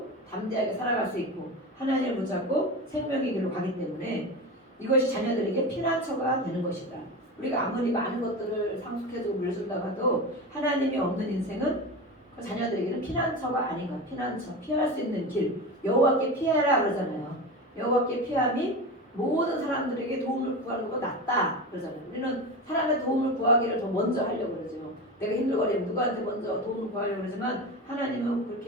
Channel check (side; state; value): both; normal; correlation 0.25